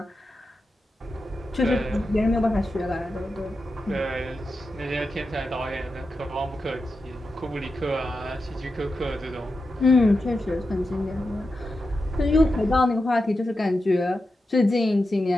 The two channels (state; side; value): normal; both; correlation 0.90